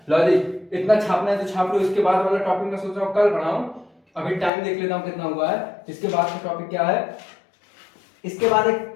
लॉजिक? इतना छापना है तो छाप लो। इसके बाद वाला टॉपिक मैं सोच रहा हूँ कल पढ़ाऊं। अभी टाइम देख लेता हूँ कितना हुआ है। इसके बाद का टॉपिक क्या है? इसके बाद एक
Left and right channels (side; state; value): right; drops out; at 4.5 s